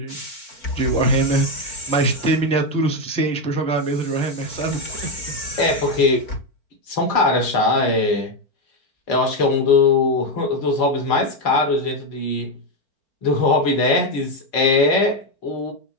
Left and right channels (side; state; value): right; late; 4.6 ms